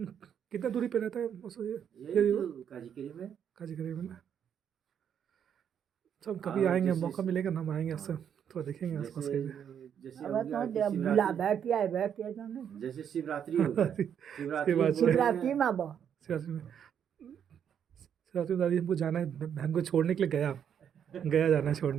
दूरी पे रहता है यही तो काजीकरी में। काजीगरी में ना। अच्छा हम कभी और आएंगे, जैसे- मौका मिलेगा ना हम आएंगे हाँ। आपसे थोड़ा देखेंगे आसपास जैसे के। जैसे अब हो तो गया कि बुला शिवरात्रि, बे क्या है बे के जाने जैसे शिवरात्रि हो गया, शिवरात्रि शिवरात्रि। बोल रहे शिवरात्रि हैं- में बा शिवरात्रि में, शिवरात्रि में दादी हमको जाना है, बहन को छोड़ने के लिए गया जाना है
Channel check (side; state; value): left; quieter; 8.5 dB